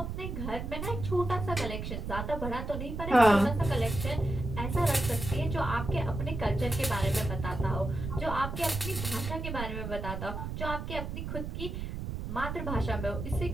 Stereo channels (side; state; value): right; noise; rumble, 5 dB below the sound